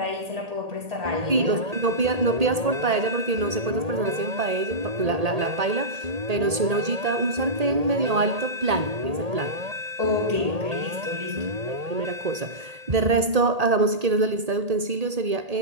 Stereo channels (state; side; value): late; left; 1.8 ms